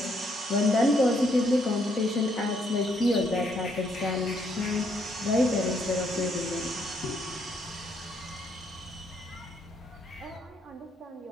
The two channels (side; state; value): both; normal; correlation 0.72